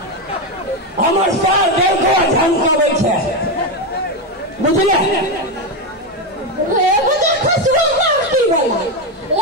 हमर साल देखो झमकावे छे बुझले एगो तो खसवा मारती वाला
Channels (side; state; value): both; normal; correlation 0.10